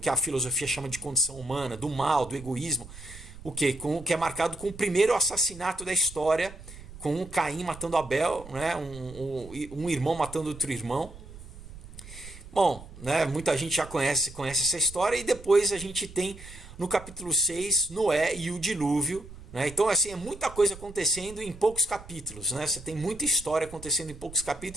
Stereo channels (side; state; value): right; noise; rumble, 16 dB below the sound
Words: a filosofia chama de condição humana, do mal, do egoísmo. o quê? Que é marcado com o primeiro assassinato da história, com um Caim matando Abel, né? Um irmão matando outro irmão. Bom, né, muita gente já conhece essa história, e depois a gente tem no capítulo 6 Noé e o dilúvio, né? Então assim, é muita coisa acontecendo em poucos capítulos, né? Você tem muita história acontecendo em poucos